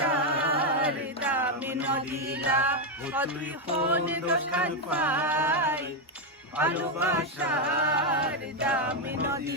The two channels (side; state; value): both; normal; correlation 0.04